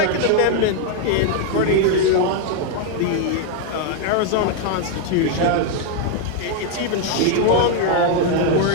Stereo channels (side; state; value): both; different; correlation 0.00